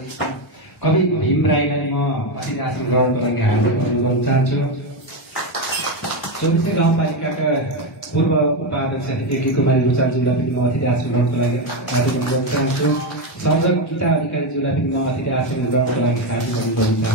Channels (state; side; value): normal; both; correlation 0.10